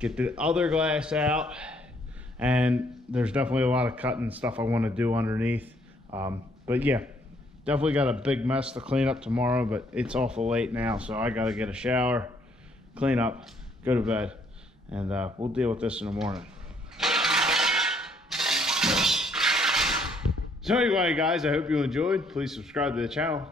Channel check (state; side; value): normal; both; correlation 0.67